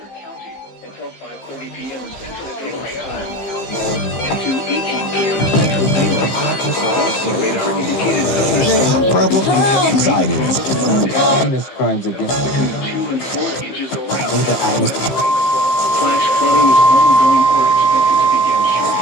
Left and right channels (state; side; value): late; right; 15 ms